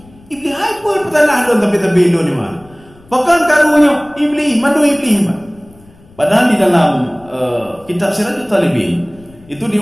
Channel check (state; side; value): noise; left; rumble, 26 dB below the sound